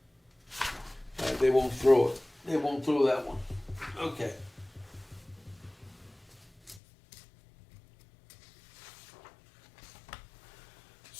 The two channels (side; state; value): right; drops out; at 6.8 s